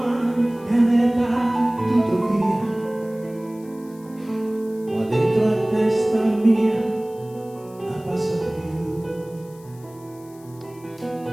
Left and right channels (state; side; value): noise; left; hiss, 26 dB below the sound